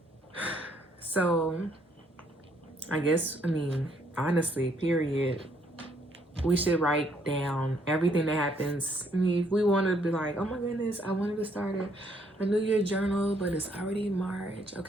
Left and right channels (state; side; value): normal; both; correlation 0.68